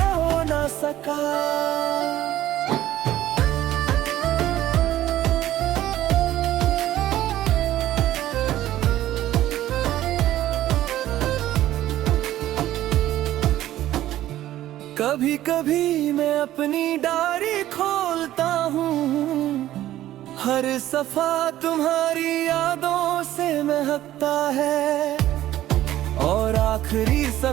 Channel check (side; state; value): left; quieter; 13.7 dB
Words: हो ना सका। कभी कभी मैं अपनी डायरी खोलता हूँ, हर सफा तुम्हारी यादों से महकता है। और आखिरी